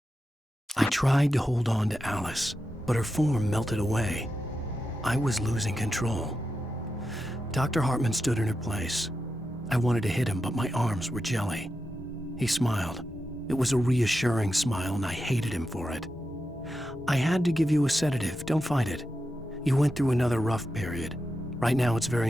I tried to hold on to Alice, but her form melted away. I was losing control. Dr. Hartman stood in her place. I wanted to hit him, but my arms were jelly. He smiled. It was a reassuring smile, and I hated him for it. I had to give you a sedative. Don't fight it. You went through another rough period. Right now, it's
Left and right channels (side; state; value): both; normal; correlation 0.89